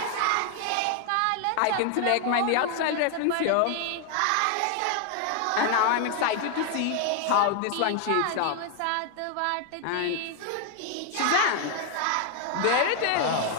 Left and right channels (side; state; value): both; different; correlation 0.00